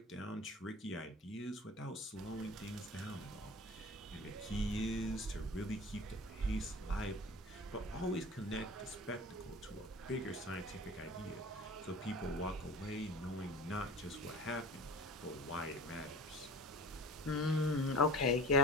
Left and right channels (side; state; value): both; normal; correlation 0.38